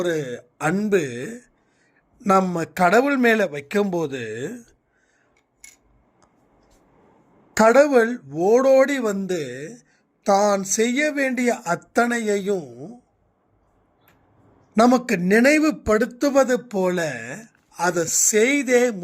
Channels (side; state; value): both; identical; correlation 1.00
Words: அன்பு நம்ம கடவுள் மேல வைக்கும்போது கடவுள் ஓடோடி வந்து தான் செய்ய வேண்டிய அத்தனையையும் நமக்கு நினைவுபடுத்துவது போல அதை செய்தே